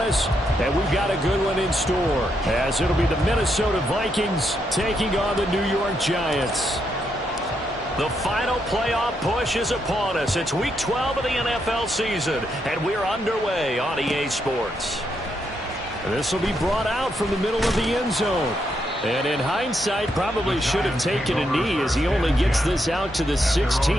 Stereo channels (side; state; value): both; normal; correlation 0.79